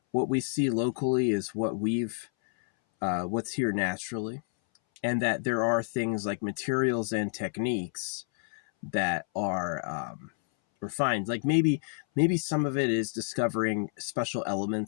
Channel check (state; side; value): silent; right; 58 dB below the other